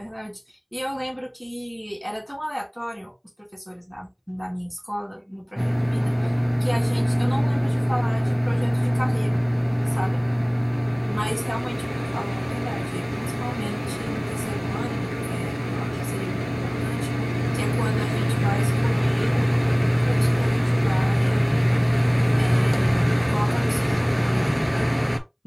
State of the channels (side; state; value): both; identical; correlation 1.00